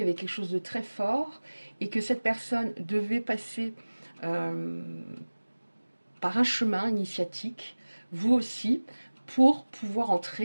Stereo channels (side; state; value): both; inverted; correlation -1.00